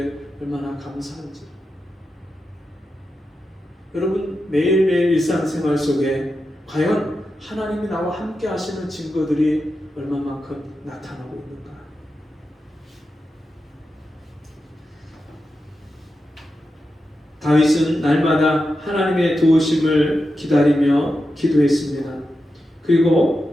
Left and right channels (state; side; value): normal; both; correlation 0.89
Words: 얼마나 감사한지. 여러분, 매일매일 일상생활 속에 과연 하나님이 나와 함께 하시는 증거들이 얼마만큼 나타나고 있는가? 다윗은 날마다 하나님의 도우심을 기다리며 기도했습니다.